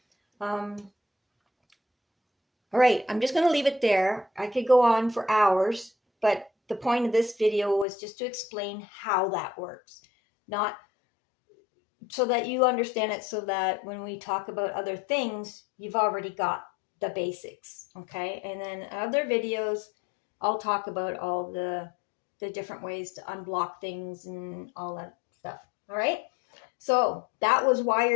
All right, I'm just going to leave it there. I could go on for hours, but the point of this video was just to explain how that works. Not so that you understand it, so that when we talk about other things, you've already got the basics, okay? And then other videos, I'll talk about all the different ways to unblock things and all that stuff, all right? So that was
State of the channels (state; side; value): drops out; right; at 7.9 s